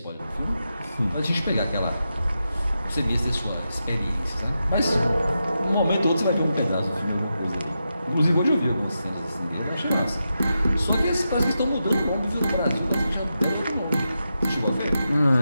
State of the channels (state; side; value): inverted; both; correlation -0.88